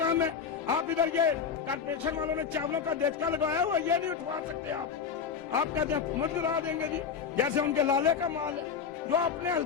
है। आप इधर ये कारपोरेशन वालों ने चावलों का देचका लगाया हुआ, ये नहीं उठवा सकते आप कहते हैं हुकूमत गिरा देंगे जी, जैसे उनके लाले का माल है जो अपने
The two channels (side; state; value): right; quieter; 6.6 dB